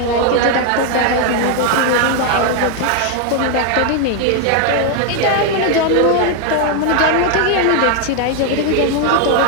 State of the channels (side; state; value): both; different; correlation 0.00